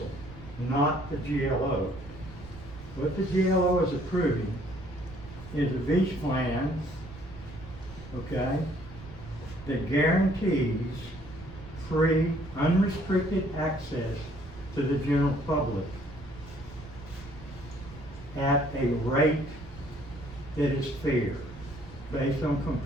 not the GLO. What the GLO is approving is a beach plan, okay, that guarantees free, unrestricted access to the general public at a rate that is fair, based on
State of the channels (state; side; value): noise; right; rumble, 17 dB below the sound